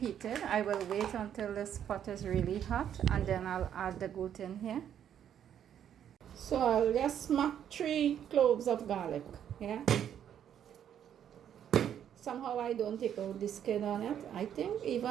I will wait until this pot is really hot and then I'll add the goat in here. So I'll just smack 3 cloves of garlic. Yeah. Somehow I don't take out the skin on it. I think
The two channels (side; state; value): left; quieter; 9.5 dB